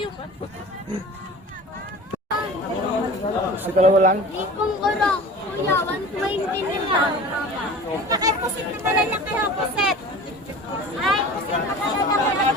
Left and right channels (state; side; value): normal; both; correlation 0.38